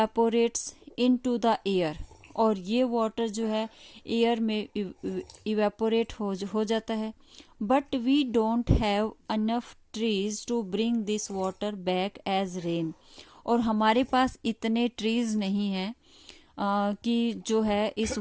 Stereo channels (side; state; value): both; identical; correlation 1.00